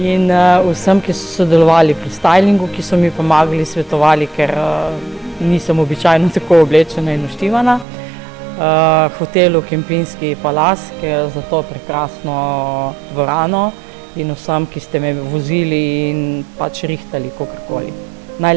vsem, ki so sodelovali pri stylingu, ki so mi pomagali, svetovali, ker nisem običajno tako oblečena in naštivana. Hotelu Kempinski Palas, ki je za to prekrasno dvorano, in vsem, ki ste me vozili in pač rihtali kakorkoli.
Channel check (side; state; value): left; drops out; at 7.9 s